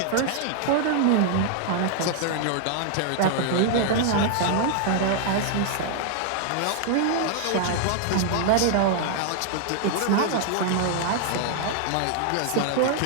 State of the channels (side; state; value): both; different; correlation -0.01